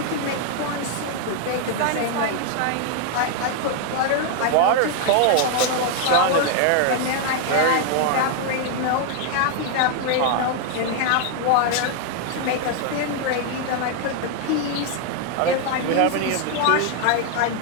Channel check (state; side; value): different; both; correlation 0.00